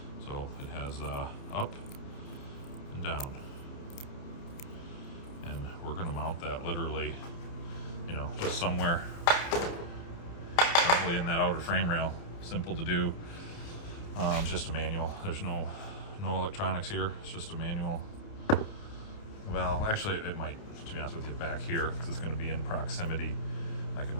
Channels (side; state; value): right; late; 29 ms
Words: So it has up and down. And we're going to mount that literally, just somewhere probably in that outer frame rail. Simple to do. Just a manual. There's no electronics here. It's just a manual valve. Actually, it might, to be honest with you, back here because it's going to be in proximity. I can